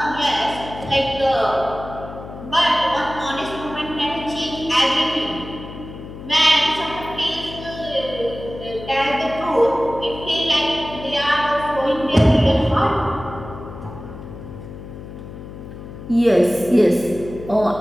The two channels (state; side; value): noise; left; hum, 13 dB below the sound